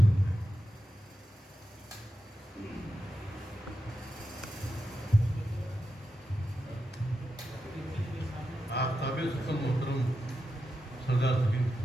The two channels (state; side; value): normal; both; correlation 0.89